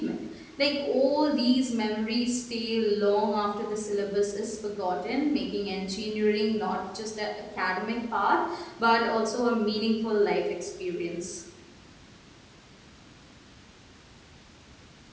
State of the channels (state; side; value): identical; both; correlation 1.00